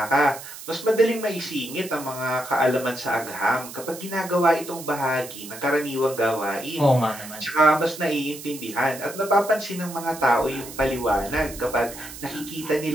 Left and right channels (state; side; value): noise; right; hiss, 13 dB below the sound